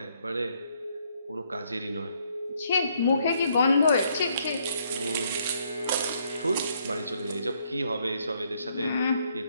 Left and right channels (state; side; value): inverted; both; correlation -0.71